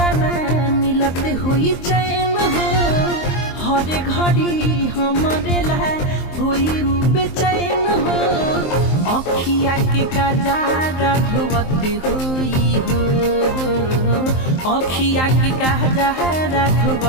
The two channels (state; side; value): late; right; 23 ms